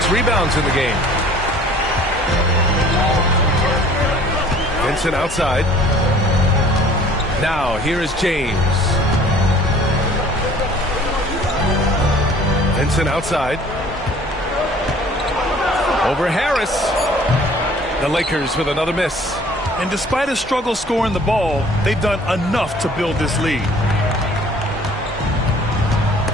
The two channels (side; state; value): both; normal; correlation 0.52